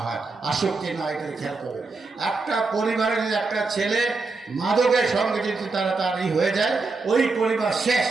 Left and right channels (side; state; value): left; quieter; 3.9 dB